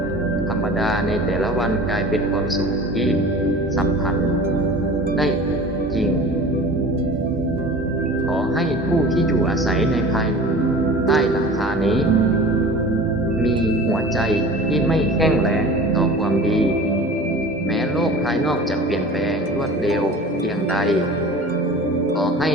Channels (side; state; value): both; normal; correlation 0.39